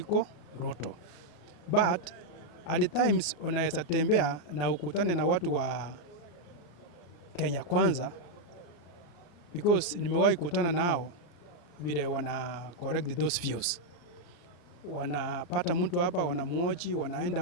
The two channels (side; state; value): right; late; 34 ms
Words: Ruto. But at the times unaweza tembea na ukutane na watu wa Kenya Kwanza, because nimewahi kutana nao vile wana correct those views. Wanapata mtu hapa, wanamuoji, wanaenda